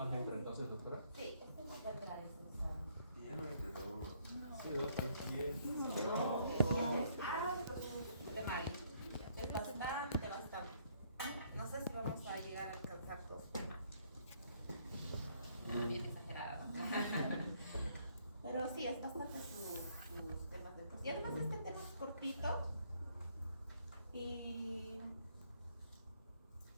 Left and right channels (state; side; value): inverted; both; correlation -0.67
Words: entra entonces, doctora? Sí, este no va a entrar en ese examen. Y ya no entra, no. Sí, doctora. De mal. Es bastante, bastante. No sé si vamos a llegar a alcanzar dos temas. Bien exagerada, ¿no? Pero sí, es bastante sus temas de... Y además este tema es cortito. Y...